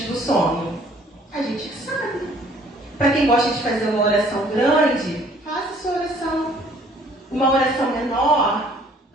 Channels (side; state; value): both; normal; correlation 0.58